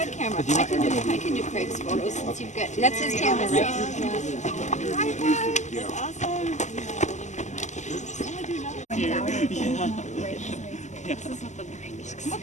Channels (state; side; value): late; right; 0.34 ms